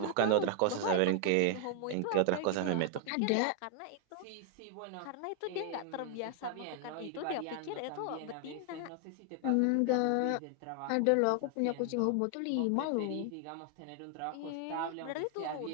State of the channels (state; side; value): different; both; correlation 0.00